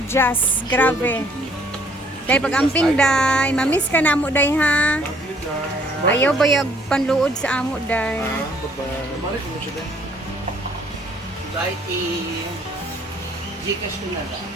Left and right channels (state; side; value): normal; both; correlation 0.62